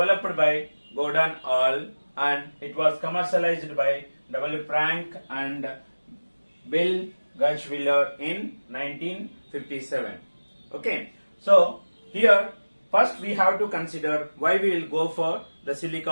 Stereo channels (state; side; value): inverted; both; correlation -1.00